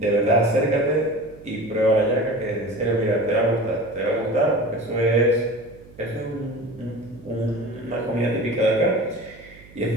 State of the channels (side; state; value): right; noise; hum, 22 dB below the sound